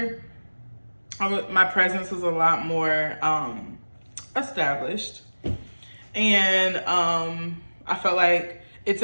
my presence was a lot more established, and I felt like it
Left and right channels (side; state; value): both; inverted; correlation -1.00